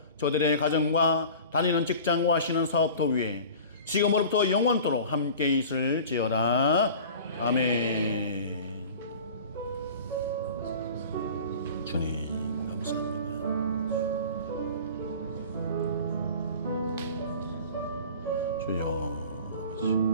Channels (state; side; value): inverted; both; correlation -0.40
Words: 저들의 가정과 다니는 직장과 하시는 사업도 위에 지금으로부터 영원토록 함께 있을지어다. 아멘. 주님 감사합니다. 주여 아버지.